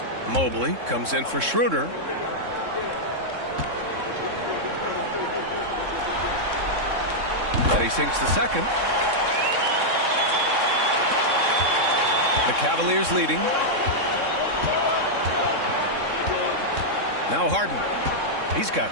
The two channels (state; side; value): late; left; 3.7 ms